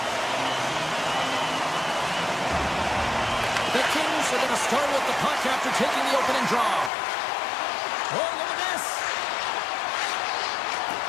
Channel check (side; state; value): right; drops out; at 6.9 s